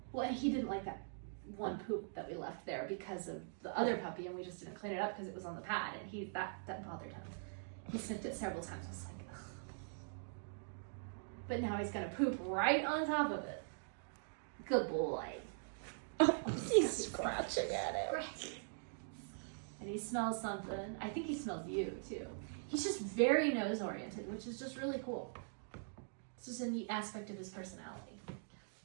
Well, and he didn't like that one poop that we left there because of the other puppy, and we just didn't clean it up because it was on the pad, and that bothered him. He sniffed it several times. I was like, ugh. But now he's gonna poop right on top of it. Good boy. Oh, he's scratching at it. And he smells something. I think he smells you too. He's just very nose oriented, which is just really cool. It's just a neat aspect of his personality.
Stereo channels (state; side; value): silent; left; digital silence